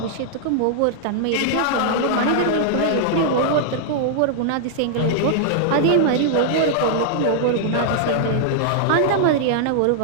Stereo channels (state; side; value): different; both; correlation -0.01